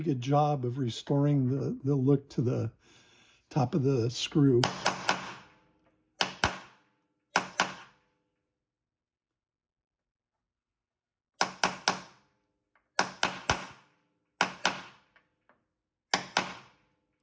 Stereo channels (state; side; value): identical; both; correlation 1.00